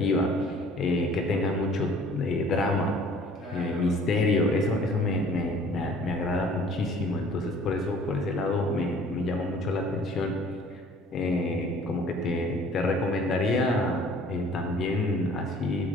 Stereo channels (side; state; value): both; normal; correlation 0.52